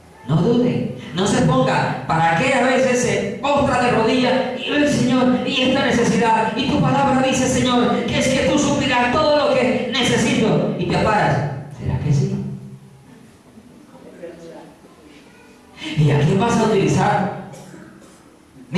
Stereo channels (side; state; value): both; identical; correlation 1.00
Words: No dude, no se ponga. ¿Para qué a veces se postra de rodillas y ve, Señor, y esta necesidad? Y tu palabra dice, Señor, que es que tú suplirás todo lo que necesito. Y te paras. ¿Será que sí? ¿Y a quién vas a utilizar?